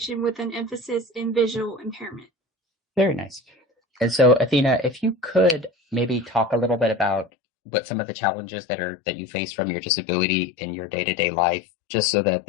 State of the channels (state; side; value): drops out; right; at 7.3 s